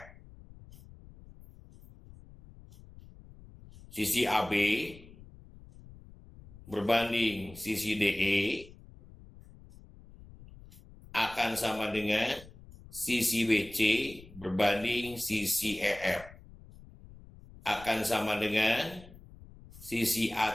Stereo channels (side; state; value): left; noise; rumble, 20 dB below the sound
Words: Sisi AB berbanding sisi DE akan sama dengan sisi BC berbanding sisi EF. Akan sama dengan sisi